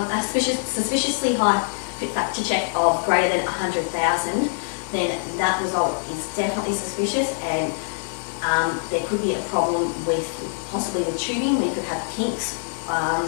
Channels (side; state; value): right; silent; digital silence